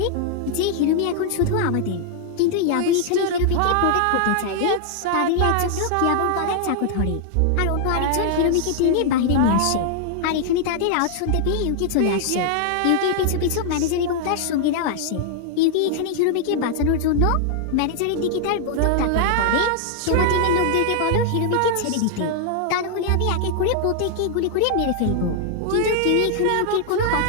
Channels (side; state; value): both; different; correlation 0.00